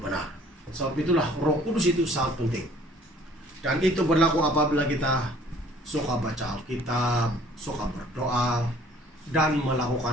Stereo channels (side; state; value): both; normal; correlation 0.55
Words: Sebab itulah Roh Kudus itu sangat penting. Dan itu berlaku apabila kita suka baca Alkitab, suka berdoa, dan